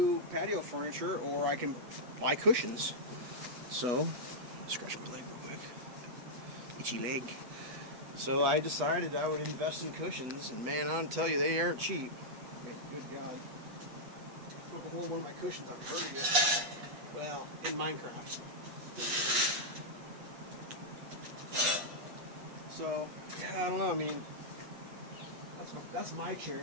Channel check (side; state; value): left; late; 8.2 ms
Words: patio furniture, or I can buy cushions. So, scratch my leg real quick. Itchy leg. So I decided I would invest in cushions, and man, I'll tell you, they aren't cheap. Good God. Took a hole in one of my cushions on Patio. Well, in Minecraft. So, yeah, I don't know, I mean, that's my chair,